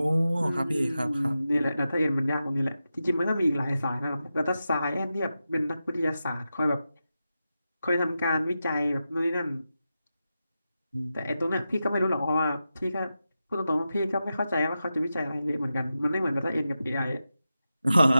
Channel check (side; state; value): both; inverted; correlation -0.91